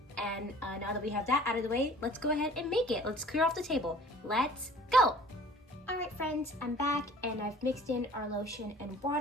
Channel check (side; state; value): both; normal; correlation 0.50